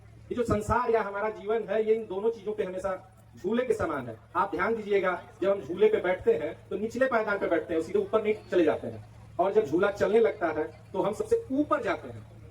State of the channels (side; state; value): both; identical; correlation 1.00